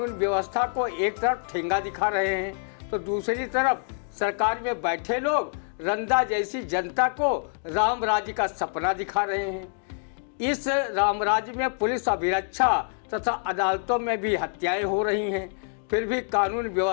व्यवस्था को एक तरफ ठेंगा दिखा रहे हैं तो दूसरी तरफ सरकार में बैठे लोग रंदा जैसी जनता को राम राज्य का सपना दिखा रहे हैं। इस राम राज्य में पुलिस अभिरक्षा तथा अदालतों में भी हत्याएं हो रही हैं, फिर भी कानून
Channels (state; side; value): silent; right; digital silence